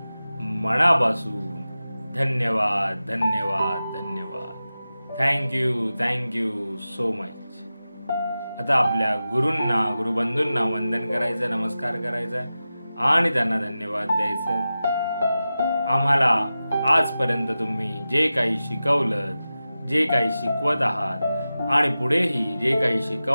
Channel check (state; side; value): inverted; both; correlation -0.94